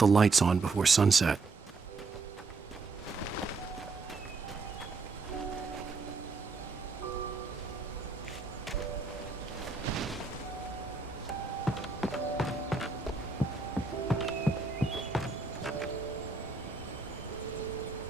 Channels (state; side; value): quieter; left; 4.1 dB